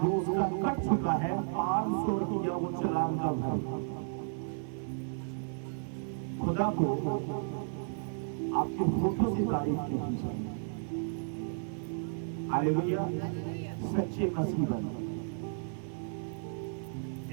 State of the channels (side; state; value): left; silent; digital silence